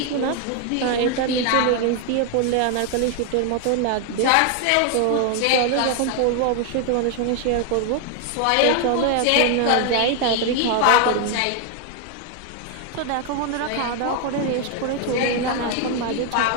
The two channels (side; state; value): both; different; correlation 0.00